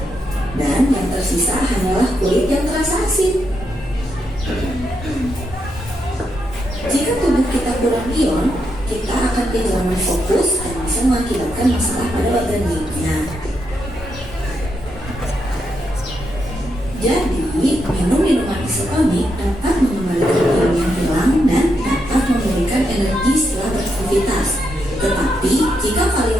Dan yang tersisa hanyalah kulit yang terasa asin. Jika tubuh kita kurang ion, kita akan kehilangan fokus dan bisa mengakibatkan masalah pada organ lainnya. Jadi, minum minuman isotonik dapat mengembalikan ion yang hilang dan dapat memberikan energi setelah beraktivitas. Tetapi, jika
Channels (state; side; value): normal; both; correlation 0.81